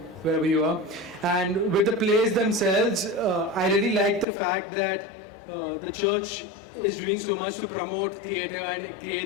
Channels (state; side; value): drops out; right; at 4.2 s